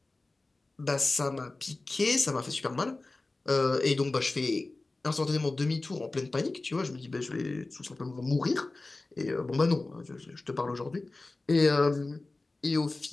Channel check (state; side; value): quieter; right; 3.2 dB